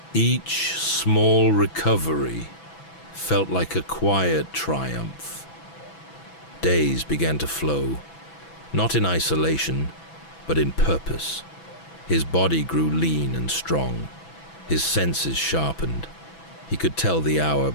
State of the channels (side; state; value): right; late; 6.1 ms